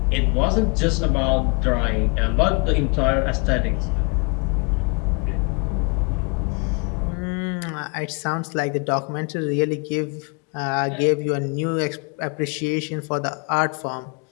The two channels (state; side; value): quieter; right; 32.8 dB